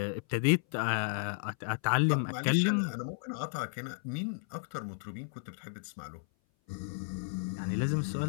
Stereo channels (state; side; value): silent; right; 56 dB below the other